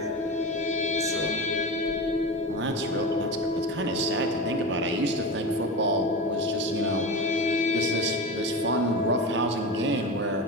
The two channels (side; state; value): both; normal; correlation 0.25